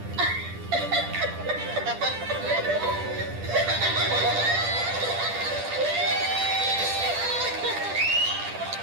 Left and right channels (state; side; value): late; left; 10 ms